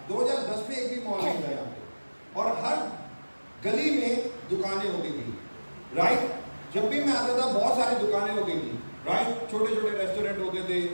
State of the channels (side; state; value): both; inverted; correlation -1.00